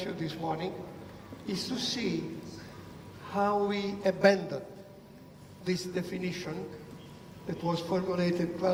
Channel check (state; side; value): identical; both; correlation 1.00